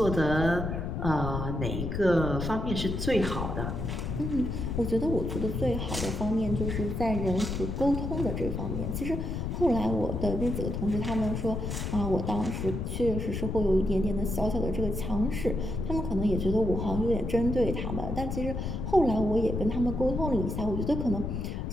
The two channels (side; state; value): left; noise; rumble, 3 dB below the sound